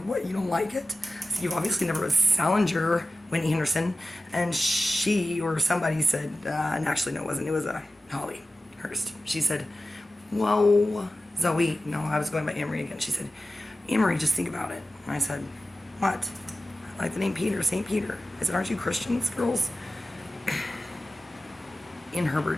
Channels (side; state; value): both; normal; correlation 0.95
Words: what, you don't like it? I said, you obviously never read Salinger, Whitney Henderson. And she or somebody said, and actually no, it wasn't. It was Holly Hurst. She said, whoa, Zoe. No, I was going by Amory again. She said, Amory, just think about it. And I said, what? I like the name Peter, St. Peter. I said, aren't you Christians, girls? Ian